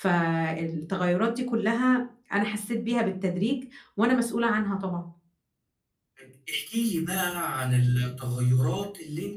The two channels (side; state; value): both; identical; correlation 1.00